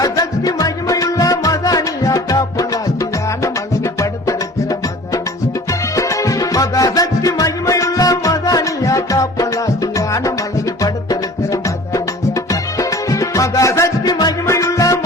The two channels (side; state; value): both; normal; correlation 0.44